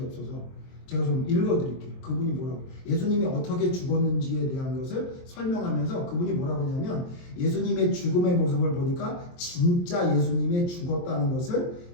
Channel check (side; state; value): right; late; 23 ms